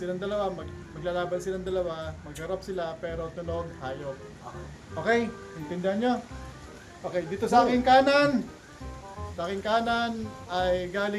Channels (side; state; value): both; identical; correlation 1.00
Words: dalawa, maglalaban silang dalawa, magharap sila pero tunog hayop. Okay, intindihan nyo? Okay, dito sa aking kanan. Sa aking kanan ay